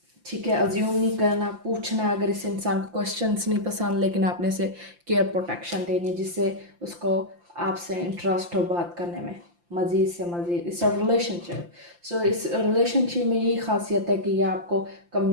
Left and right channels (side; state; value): left; late; 5.8 ms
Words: ठीक है, अज्यूम नहीं करना, पूछना अगर इस इंसान को क्वेश्चंस नहीं पसंद, लेकिन आपने से केयर प्रोटेक्शन देनी जिससे उसको आपसे इंटरेस्ट हो बात करने में, मज़ीद से मज़ीद। इट्स अ रिलेशनशिप, सो इस रिलेशनशिप में यही खासियत है कि ये आपको